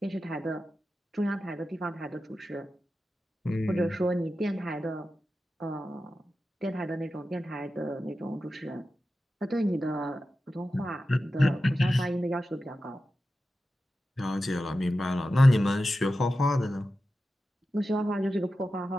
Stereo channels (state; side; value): normal; both; correlation 0.93